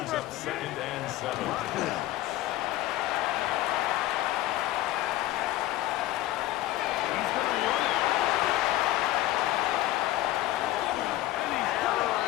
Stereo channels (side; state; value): right; quieter; 15.5 dB